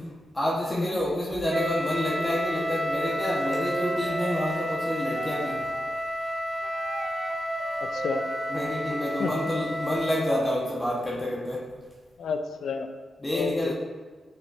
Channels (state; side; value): normal; both; correlation 0.89